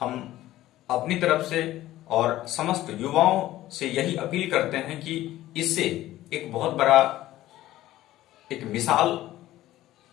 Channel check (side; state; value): right; quieter; 15.0 dB